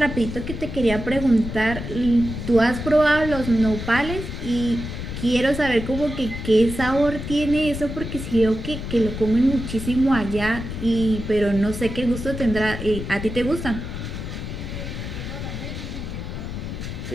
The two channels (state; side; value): noise; left; rumble, 7 dB below the sound